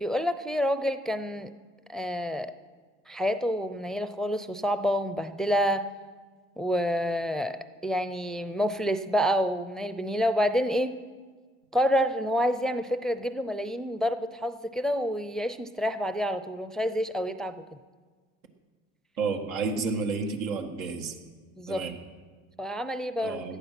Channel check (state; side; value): normal; both; correlation 0.72